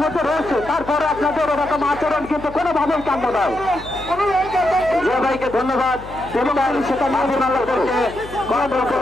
মধ্যে রয়েছে, তারপরে আপনাদের ওরকম আচরণ কিন্তু কোনোভাবেই কাম্য নয়। যে ভাইকে ধন্যবাদ, এবং সেটা মাঝে কন্ট্রোল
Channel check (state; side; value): noise; left; hum, 16 dB below the sound